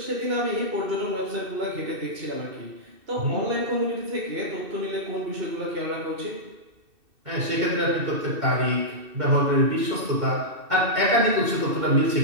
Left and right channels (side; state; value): left; late; 2.6 ms